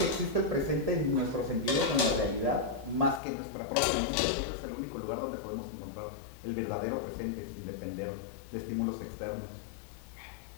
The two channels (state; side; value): drops out; right; at 3.2 s